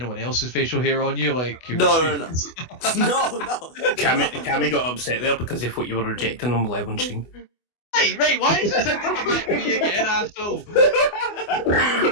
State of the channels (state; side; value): late; right; 24 ms